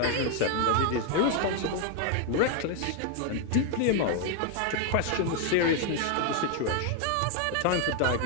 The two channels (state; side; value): different; both; correlation 0.01